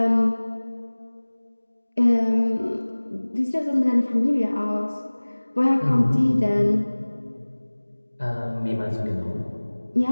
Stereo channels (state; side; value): inverted; both; correlation -1.00